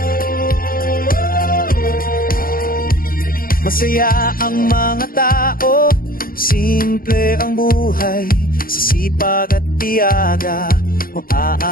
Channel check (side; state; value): right; late; 0.42 ms